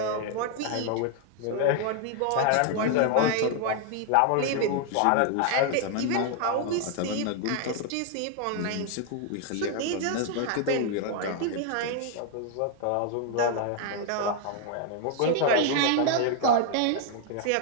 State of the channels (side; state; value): both; different; correlation 0.00